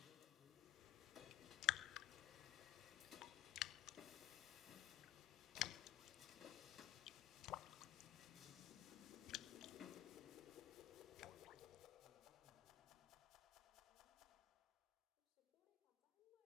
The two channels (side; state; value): right; quieter; 13.3 dB